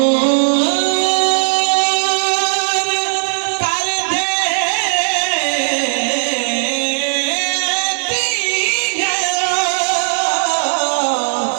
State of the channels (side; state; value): left; silent; digital silence